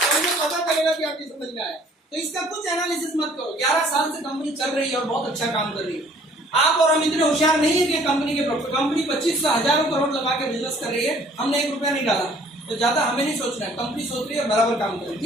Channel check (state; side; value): normal; both; correlation 0.57